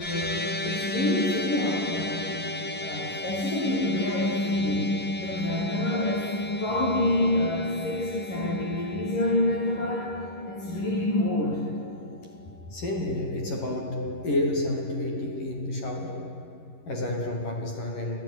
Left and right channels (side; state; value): right; late; 11 ms